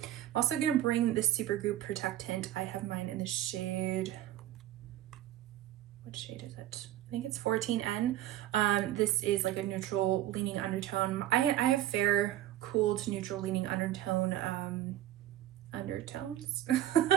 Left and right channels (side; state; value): left; quieter; 13.1 dB